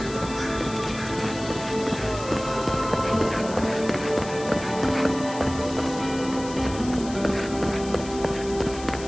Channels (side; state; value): left; noise; hiss, 14 dB below the sound